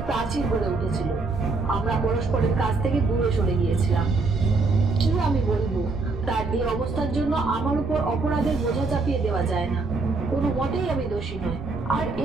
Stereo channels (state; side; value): quieter; left; 3.8 dB